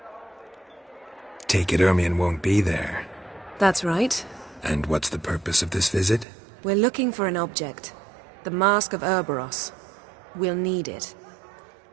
Take it Ermien won't be there. That's right. And what's the purpose of this visit? We're looking for an object. The Mask of Urboros. We'll need it.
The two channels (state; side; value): drops out; left; at 6.2 s